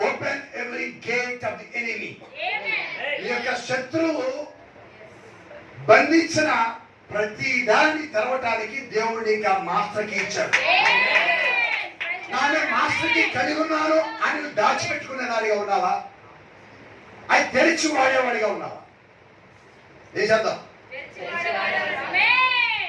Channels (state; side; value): identical; both; correlation 1.00